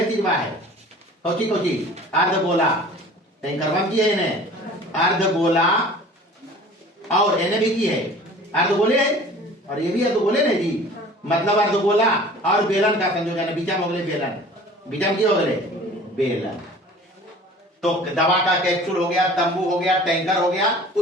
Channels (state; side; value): normal; both; correlation 0.45